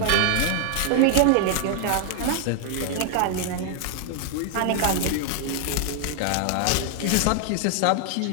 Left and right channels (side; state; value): both; different; correlation 0.00